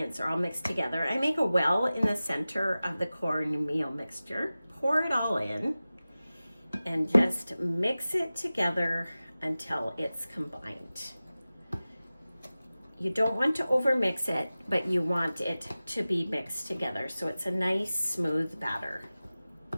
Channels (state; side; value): inverted; both; correlation -0.96